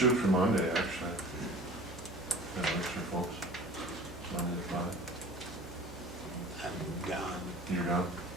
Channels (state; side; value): noise; right; hum, 16 dB below the sound